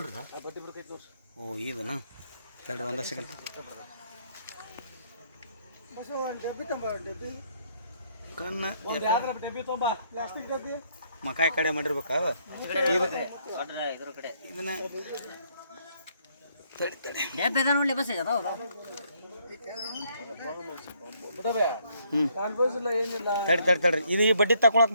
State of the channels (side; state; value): both; inverted; correlation -0.70